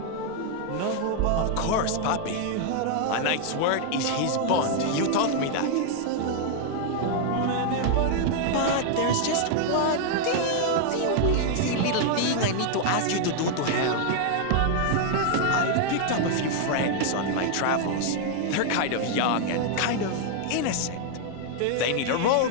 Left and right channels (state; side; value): different; both; correlation 0.00